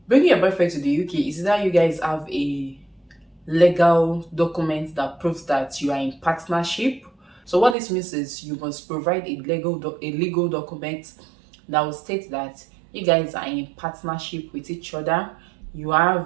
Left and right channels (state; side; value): drops out; left; at 7.8 s